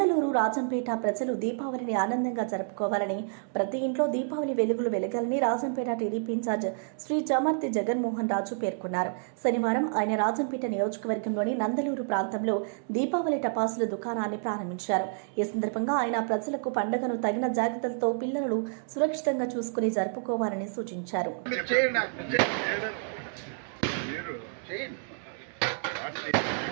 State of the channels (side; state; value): left; silent; digital silence